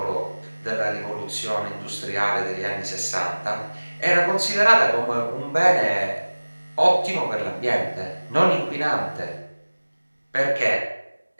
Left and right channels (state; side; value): inverted; both; correlation -1.00